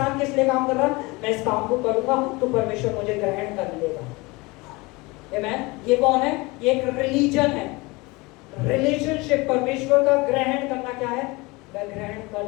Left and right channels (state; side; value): quieter; right; 24.2 dB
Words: किस लिए काम कर रहा है? मैं इस काम को करूंगा तो परमेश्वर मुझे ग्रहण कर लेगा। आमेन। ये कौन है? ये एक रिलीजन है, रिलेशनशिप। परमेश्वर का ग्रहण करना क्या है? मैं ग्रहण कर